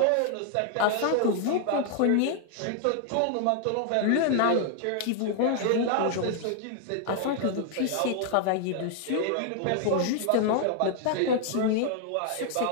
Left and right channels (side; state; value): both; different; correlation 0.00